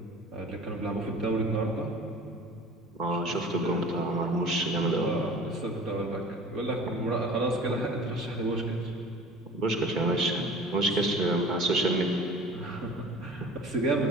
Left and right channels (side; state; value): both; normal; correlation 0.44